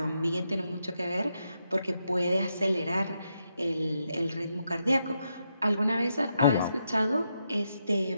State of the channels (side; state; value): both; inverted; correlation -0.82